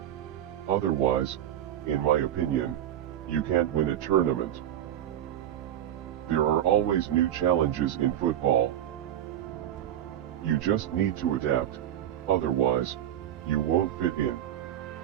Otherwise, in my opinion, you can't win a tournament. There are always new challenges in football. You just need to adapt, otherwise, you won't fit in.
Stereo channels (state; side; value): quieter; left; 11.3 dB